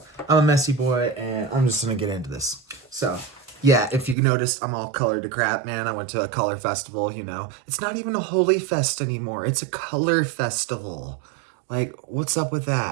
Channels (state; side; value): drops out; left; at 4.2 s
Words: I'm a messy boy, and I'm just gonna get into this. So, yeah, if you noticed, I'm all colored to crap, man. I went to a color festival, It's not even a holy fest anymore. It's a color festival. Like, what's up with